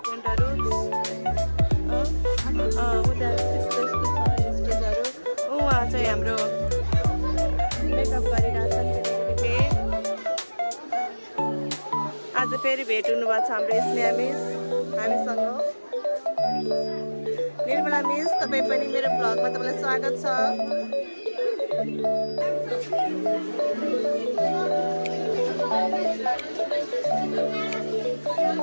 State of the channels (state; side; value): inverted; both; correlation -1.00